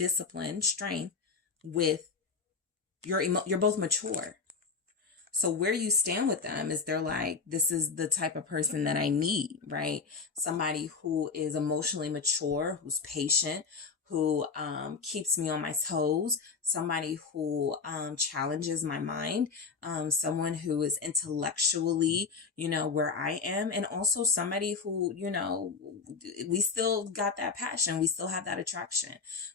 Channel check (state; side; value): quieter; right; 5.0 dB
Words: strength with you're both mature. So where you stand with them is they're like, this is the type of person that I need, right? Somebody who is emotionally mature, who's patient, who keeps me on my toes, somebody who challenges my mind, someone who is intellectually, where I am, and also somebody who, we still got that passion, we still have that attraction.